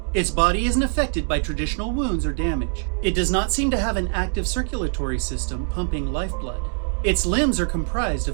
Its body isn't affected by traditional wounds or damage. It does not seem to have an active circulatory system pumping lifeblood. Its limbs are comprised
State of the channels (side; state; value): left; silent; 56 dB below the other